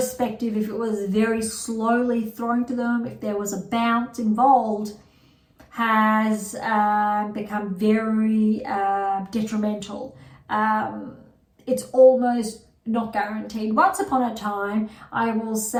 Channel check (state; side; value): identical; both; correlation 1.00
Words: if it was very slowly thrown to them, if there was a bounce involved, has become very detrimental. It's almost not guaranteed. Once upon a time, I will